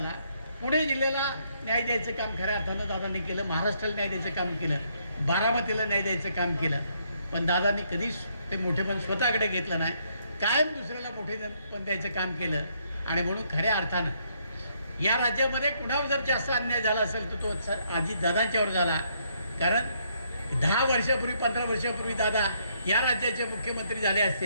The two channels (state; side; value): inverted; both; correlation -0.72